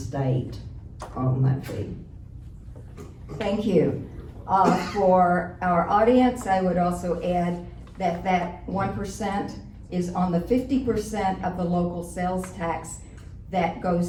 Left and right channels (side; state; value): both; identical; correlation 1.00